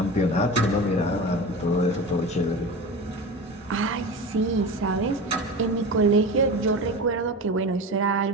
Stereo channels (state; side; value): normal; both; correlation 0.29